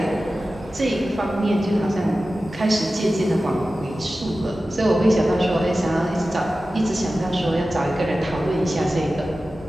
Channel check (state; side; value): normal; both; correlation 0.95